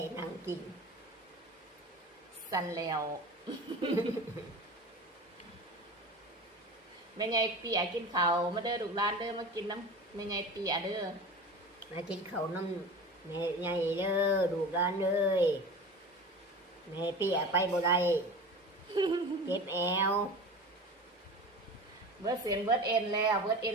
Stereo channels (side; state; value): both; normal; correlation 0.34